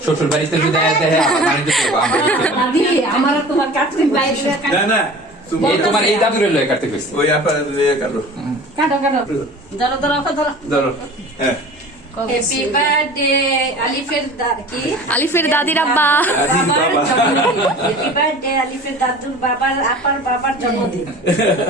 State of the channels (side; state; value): both; normal; correlation 0.41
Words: শ্বশুর বাড়িতে যদি আয়াতে আবার বাণিজ্য করবো আমরা যেতে না। দাদি আমার আর তোমার কাটতে বাইরে না না তুমি এই তোমার এই দাদুরে লয়ে কাটতে কইছি। ওই আপা কাটো কাটো কাটো ধরো ধরো ধরো। ধরো হ্যাঁ হ্যাপি বার্থডে আলিফের কি আলিফের দাদির আব্বা। আজিজ বাবার বাবা জন্মদিন। হ্যাপি বার্থডে আলিফের দাদুর বাবার আপার বাবার জন্মদিন।